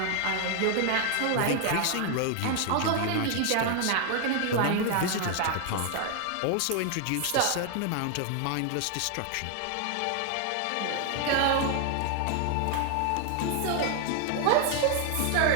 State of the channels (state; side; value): different; both; correlation 0.00